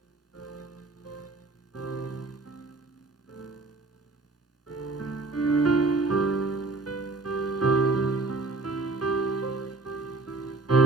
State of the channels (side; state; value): left; quieter; 3.5 dB